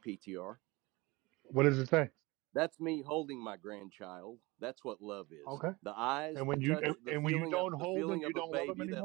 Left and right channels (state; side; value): quieter; left; 23.2 dB